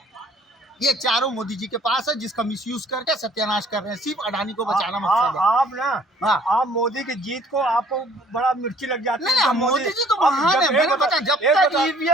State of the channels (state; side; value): normal; both; correlation 0.57